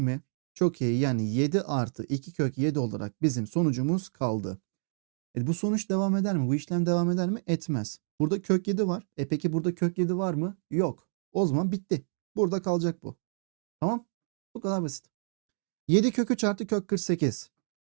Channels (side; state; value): left; silent; digital silence